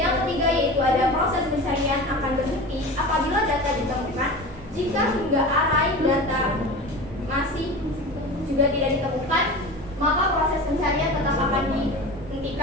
ketiga yaitu ada proses pencarian akan berhenti apabila data ditemukan. Jika hingga array data masih juga tidak ditemukan, maka proses pencarian tetap akan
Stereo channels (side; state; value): both; normal; correlation 0.32